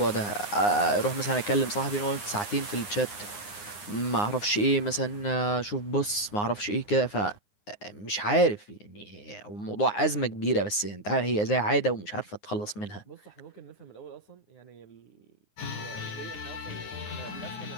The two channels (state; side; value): late; right; 9.7 ms